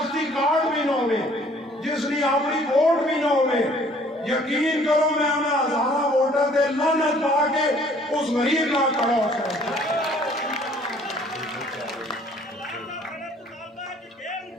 کارڈ بھی نہ ہوئے جس نے اپنی ووٹ بھی نہ ہوئے یقین کرو میں انہیں ہزاروں ووٹر دے لعنت پا کے اس غریب نال کھڑا ہو سکتا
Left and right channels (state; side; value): normal; both; correlation 0.57